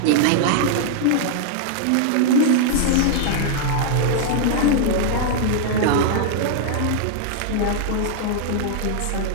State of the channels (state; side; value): different; both; correlation -0.01